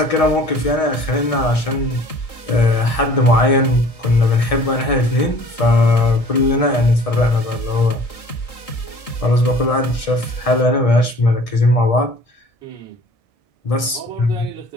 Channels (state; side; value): late; right; 1.6 ms